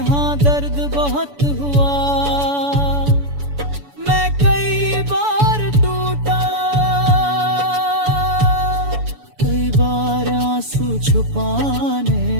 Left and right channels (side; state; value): left; late; 7.0 ms